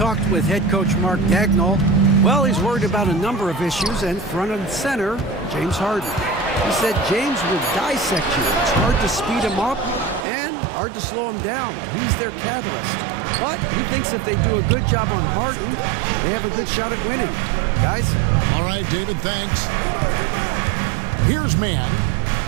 with head coach Mark Dagnall. Well, he's worried about a number of issues, and front and center, James Harden. He said James will dissect you. It's hard to speed him up and hard to slow him down. He's their catalyst. But he thinks if they do a good job on Harden, they have a good shot at winning. Guys? All right, David, thanks. Here's man,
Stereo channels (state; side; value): drops out; left; at 10.2 s